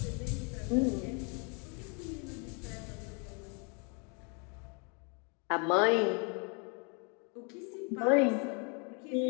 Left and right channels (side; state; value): right; quieter; 35.3 dB